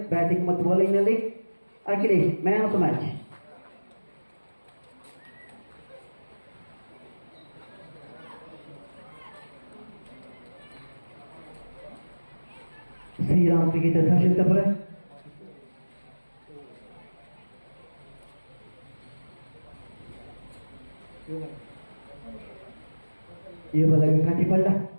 ಬ್ಯಾಟಿಂಗ್ ಮತ್ತು ಬೌಲಿಂಗ್ ನಲ್ಲಿ Akhilesh man of the match. Shriram cricketer Harshitapura ಈ ಬದಲಿಗೆ ಕಟ್ಟಿಪಳ್ಳ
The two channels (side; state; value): both; inverted; correlation -1.00